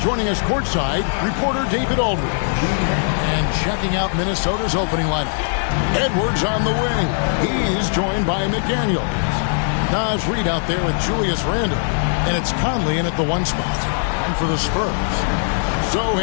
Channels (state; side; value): silent; right; digital silence